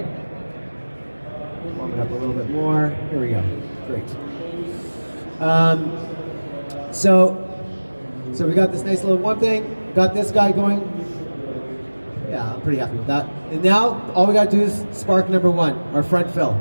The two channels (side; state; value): both; inverted; correlation -1.00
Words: Warm it up a little bit more. Here we go. Great. So we got this nice little one thing. Got this guy going. Yeah, I'm pretty happy with that. And now all we got to do is spark number one, our front fill.